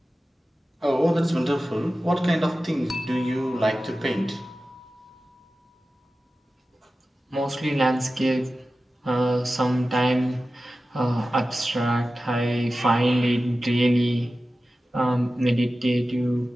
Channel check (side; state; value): both; normal; correlation 0.95